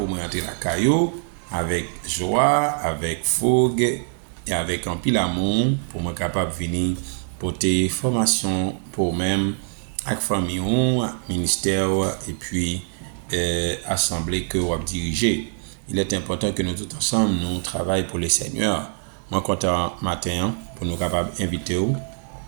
me rentrer la caillou avec joie, avec fougue et avec un pile amour pour me capable venir porter formation pour même avec famille ministère et puis assemblée que vous dirigez. Il est important que nous tous ensemble nous travaillons pour le Seigneur. Moi content matin pour nous capables inviter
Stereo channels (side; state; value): left; silent; digital silence